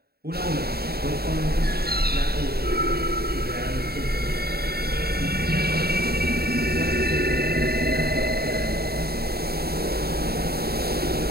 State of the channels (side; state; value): left; late; 0.45 ms